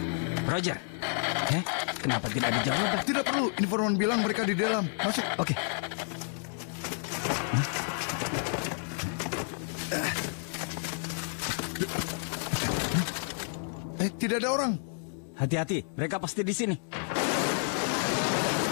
Roger. Kenapa tidak ada jawaban? Tidak perlu. Informan bilang mereka di dalam. Masuk. Oke. Tidak ada orang. Hati-hati, mereka pasti di sini.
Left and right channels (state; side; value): silent; right; 58 dB below the other